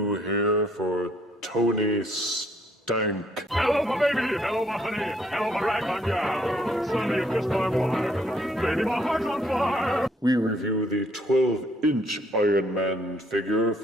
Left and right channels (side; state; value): both; normal; correlation 0.67